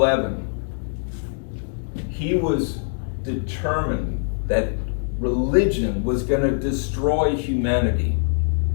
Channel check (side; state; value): right; silent; digital silence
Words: he was determined that religion was going to destroy humanity.